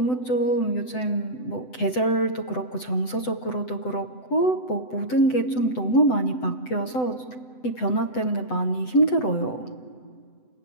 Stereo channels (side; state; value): right; late; 7.9 ms